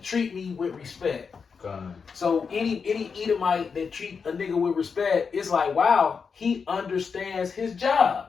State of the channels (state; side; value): quieter; right; 5.7 dB